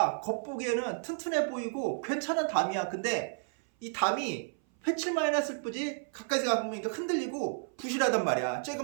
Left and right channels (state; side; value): silent; left; 57 dB below the other